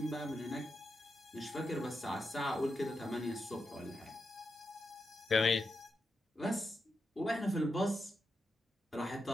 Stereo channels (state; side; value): normal; both; correlation 0.86